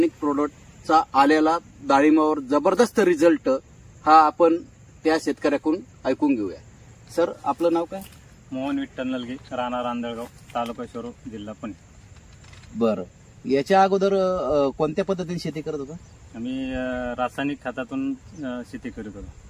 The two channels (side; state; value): both; identical; correlation 1.00